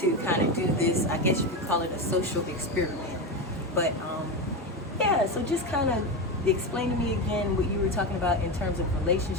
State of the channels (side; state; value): both; normal; correlation 0.16